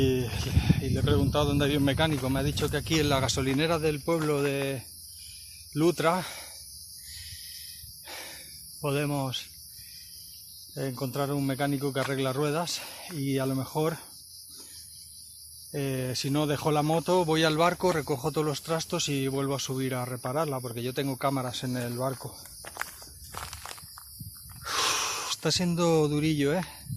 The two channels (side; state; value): both; identical; correlation 1.00